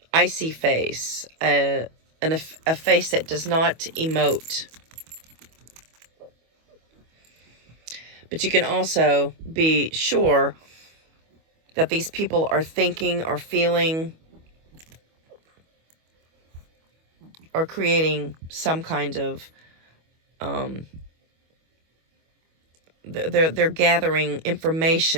icy face, a face that does not emote. But you can also be sure that these people are thinking or feeling or creating some kind of they're gathering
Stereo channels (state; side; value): late; left; 25 ms